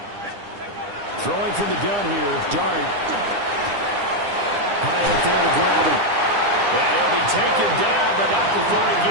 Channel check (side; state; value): left; late; 9.9 ms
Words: Throwing from the gun here, Dart. High up there to grab him. And he'll be taken down, but not before he